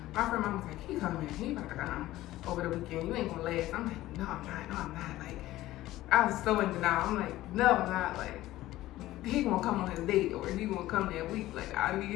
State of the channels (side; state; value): right; quieter; 15.9 dB